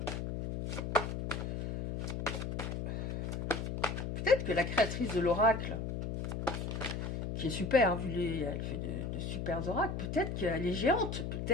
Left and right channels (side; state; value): left; noise; hum, 3 dB below the sound